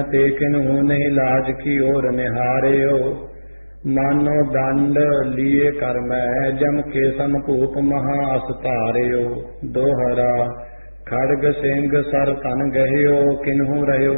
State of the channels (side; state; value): both; inverted; correlation -1.00